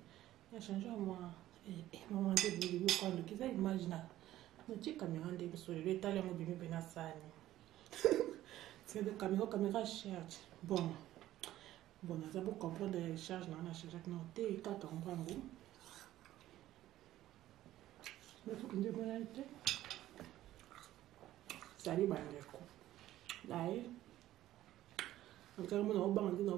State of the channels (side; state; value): left; quieter; 14.1 dB